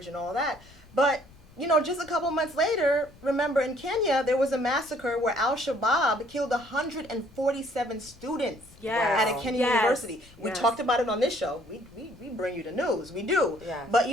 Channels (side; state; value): left; noise; rumble, 25 dB below the sound